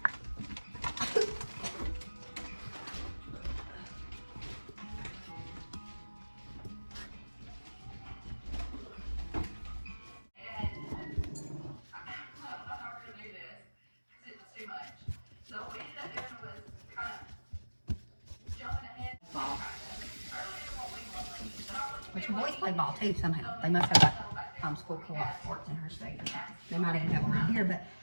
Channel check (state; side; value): inverted; both; correlation -1.00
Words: Which boys play ball too somehow. They must have got school co-op sports in her state. They might even have them around here, but